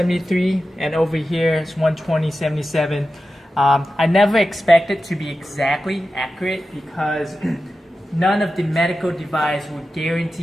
and over here it's 120.77. I never expected to be exactly accurate because none of the medical device would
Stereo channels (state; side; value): normal; both; correlation 0.93